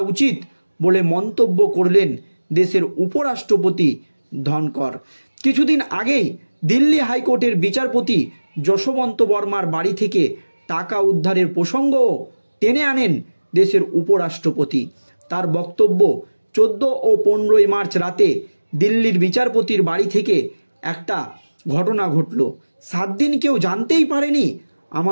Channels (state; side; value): inverted; both; correlation -1.00